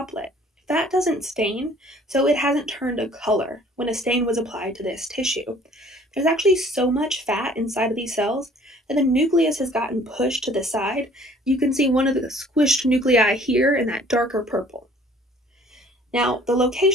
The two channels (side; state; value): both; normal; correlation 0.55